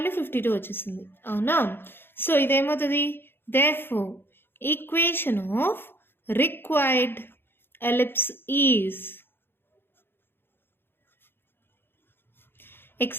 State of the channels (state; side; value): late; right; 0.10 ms